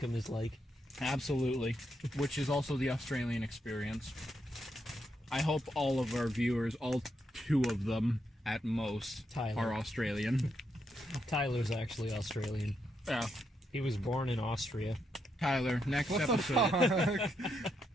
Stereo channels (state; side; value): normal; both; correlation 0.80